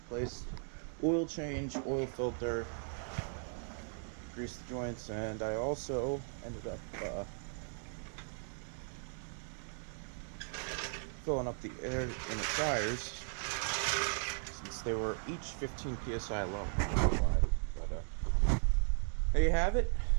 oil change, oil filter, greased the joints, and I also ended up filling up the air in the tires since they were each 15 psi low. I don't know why, but there you have it.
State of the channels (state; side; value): silent; left; 53 dB below the other